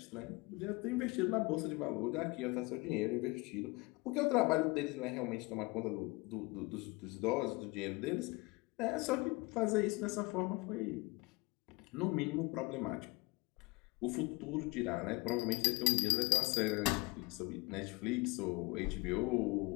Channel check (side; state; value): right; quieter; 25.0 dB